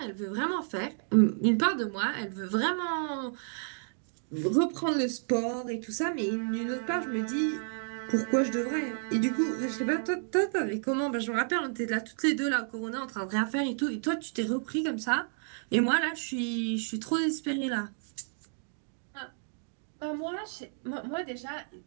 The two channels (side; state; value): left; silent; digital silence